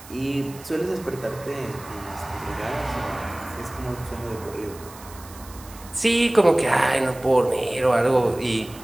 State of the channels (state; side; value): noise; right; hiss, 19 dB below the sound